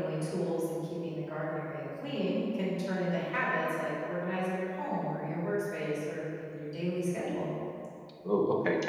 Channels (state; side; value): identical; both; correlation 1.00